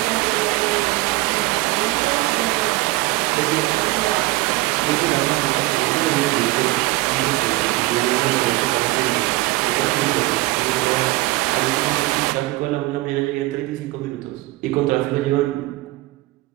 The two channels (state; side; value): quieter; left; 19.6 dB